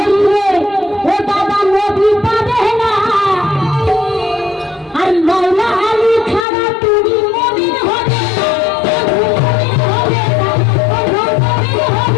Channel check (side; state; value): right; drops out; at 6.5 s